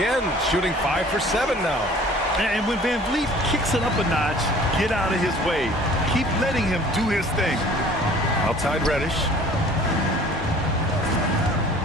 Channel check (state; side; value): normal; both; correlation 0.50